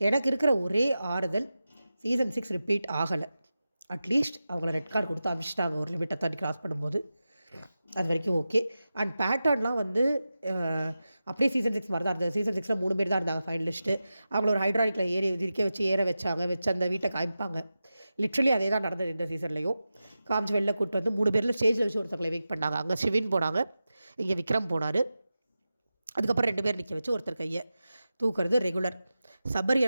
இருக்கிற ஒரே ஆறுதல், சீசன் 6 ரிப்பீட் ஆகலை. அட்லீஸ்ட் அவங்கள ரெட் கார்டு கொடுத்து அமிச்சிட்டாங்க ஒரு லிமிட்டை தாண்டி கிராஸ் பண்ணும்போது, அது வரைக்கும் ஓகே. அண்ட் பேட்டர்ன்லாம் வந்து அப்படியே சீசன் 6 மாதிரி தான் இருந்தது. சீசன் 6ல் 3 பேர் தான் இருந்தாங்க ஃபைனலிஸ்ட்டு. அவங்கள ஒரு ஹைட்ராலிக்கில் ஏற வச்சு அந்த வீட்டை காமிப்பாங்க. லிட்ரலி அதே தான் நடந்தது இந்த சீசன்லேயும். காமிச்சு வெளில கூப்பிட்டு வந்து 3 பேரில் ஸ்டேஜில் வச்சு ஒருத்தங்களை வெயிட் பண்ணாங்க. அங்கே ஷிவின் போனாங்க, இங்கே விக்ரம் போனார். அதுக்கப்புறம் 2 பேர் நிற்க வச்சு ஒருத்தர் கையை தூக்குறது ரெகுலர்.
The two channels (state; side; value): inverted; both; correlation -0.93